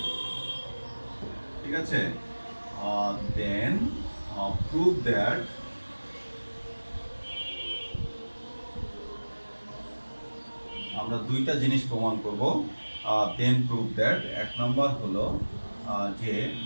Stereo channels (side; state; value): both; inverted; correlation -1.00